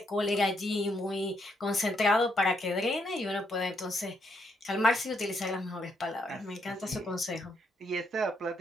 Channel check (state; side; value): normal; both; correlation 0.76